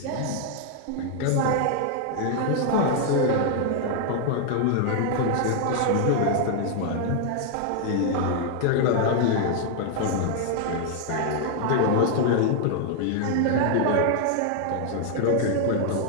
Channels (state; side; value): different; both; correlation 0.00